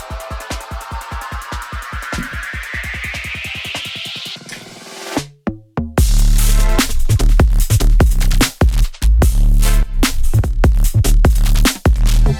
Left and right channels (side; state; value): both; identical; correlation 1.00